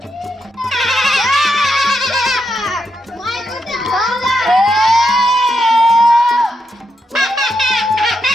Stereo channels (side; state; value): both; normal; correlation 0.82